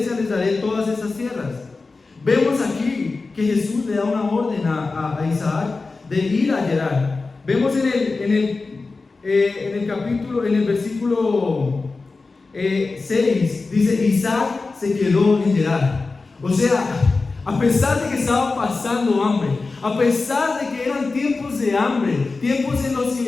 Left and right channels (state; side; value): quieter; right; 3.9 dB